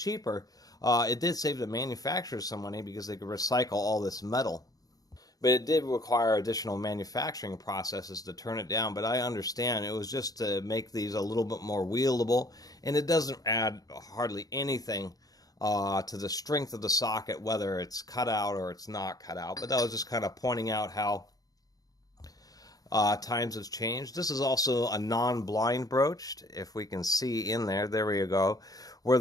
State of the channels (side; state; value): right; late; 0.18 ms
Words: It did save the manufacturers some money because they could recycle all this metal. But it did require additional manufacturing processes to turn it down. But I understand it was just to make these a little bit more wieldable, and it doesn't add hardly anything to the strength of the socket, whether it's cut out or it's not cut out. But that was just kind of pointing out how times have changed. This is also a non-blind broached, if we can see in there. There we go. Where